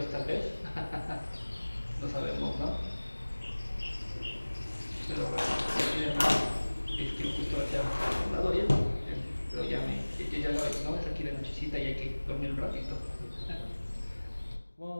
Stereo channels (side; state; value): both; inverted; correlation -1.00